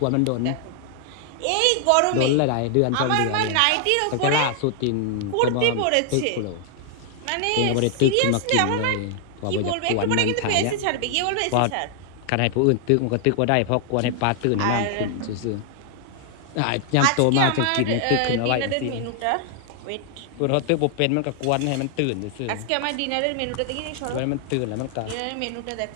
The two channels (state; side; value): different; both; correlation 0.00